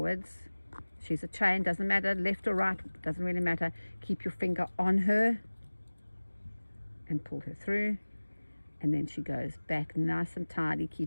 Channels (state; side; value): inverted; both; correlation -1.00